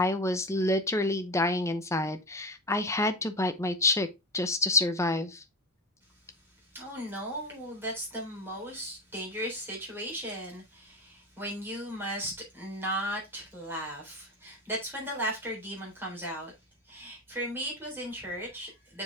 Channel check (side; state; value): both; normal; correlation 0.22